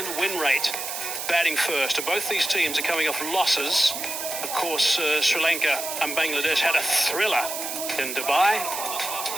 win rate batting first. And both these teams are coming off losses. Of course, Sri Lanka and Bangladesh had a thriller in Dubai.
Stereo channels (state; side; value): noise; right; hiss, 5 dB below the sound